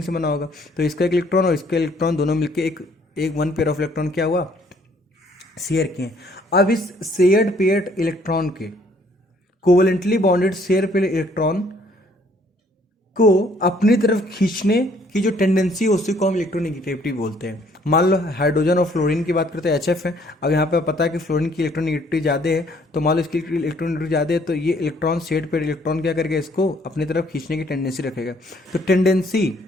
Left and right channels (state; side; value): normal; both; correlation 0.63